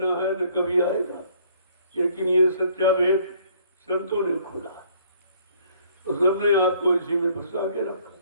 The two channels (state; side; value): inverted; both; correlation -0.61